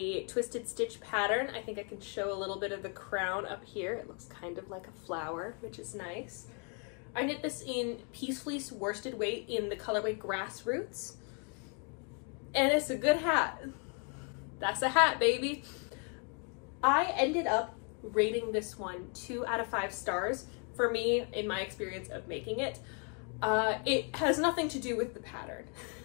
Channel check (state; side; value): quieter; right; 38.9 dB